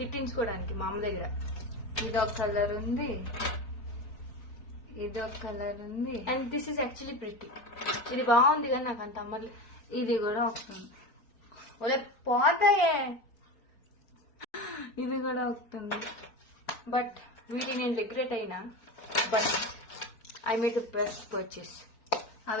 మా అమ్మ దగ్గర. ఇదొక కలర్ ఉంది, ఇదొక కలర్ ఉంది, and this is actually pretty. ఇది బాగుంది కానీ నాకు అంత అమ్మర్లేదు. ఇది కూడా వస్తుంది. ఒలే పోతాయే, ఇది కూడా వస్తుంది. బట్ వీటిని నేను రిగ్రెట్ అయినా, but I made the best purchase.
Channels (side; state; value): right; late; 4.4 ms